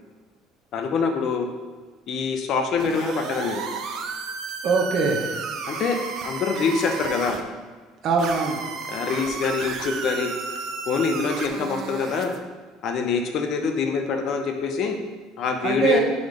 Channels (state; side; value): normal; both; correlation 0.52